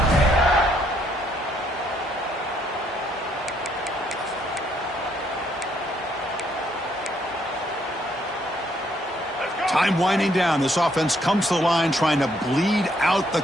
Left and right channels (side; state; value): both; normal; correlation 0.70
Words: Time winding down. This offense comes to the line trying to bleed out the